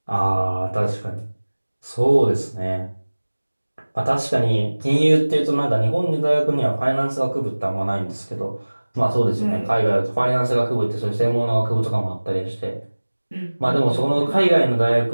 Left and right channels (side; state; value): both; inverted; correlation -1.00